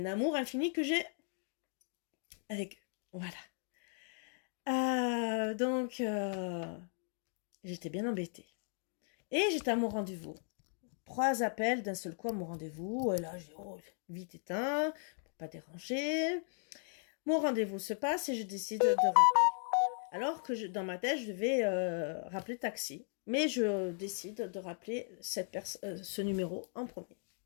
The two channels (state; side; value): silent; right; 53 dB below the other